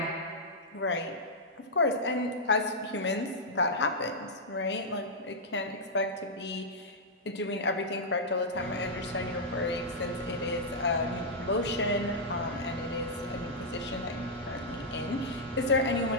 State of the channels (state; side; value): normal; both; correlation -0.08